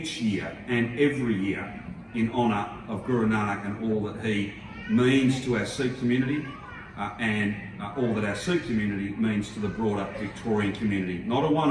year and every year in honour of Guru Nanak and all that he means to our Sikh community and all that our Sikh community means to the broader Victorian community. Not a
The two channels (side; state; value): both; identical; correlation 1.00